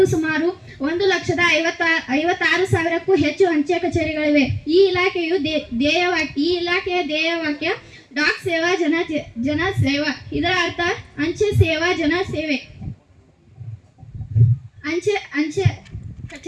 ಸುಮಾರು 1,56,000ಕ್ಕೂ ಹೆಚ್ಚು ಅಂಚೆ ಕಚೇರಿಗಳಿವೆ. ಈ ಇಲಾಖೆಯ ಧ್ಯೇಯವಾಕ್ಯ ಡಾಕ್ ಸೇವಾ ಜನ ಸೇವಾ. ಇದರ ಅರ್ಥ ಅಂಚೆ ಸೇವಾ ಜನ ಸೇವೆ. ಅಂಚೆ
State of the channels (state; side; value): identical; both; correlation 1.00